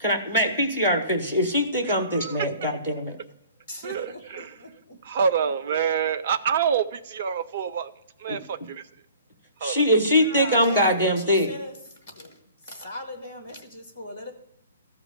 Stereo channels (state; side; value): inverted; both; correlation -0.49